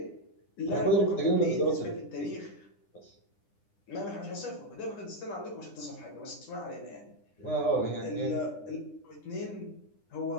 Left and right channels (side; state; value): right; late; 9.9 ms